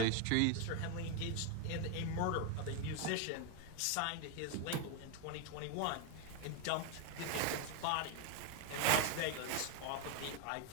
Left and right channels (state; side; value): different; both; correlation 0.01